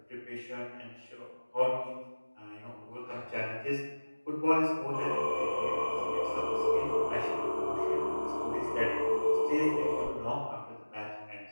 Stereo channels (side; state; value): both; inverted; correlation -1.00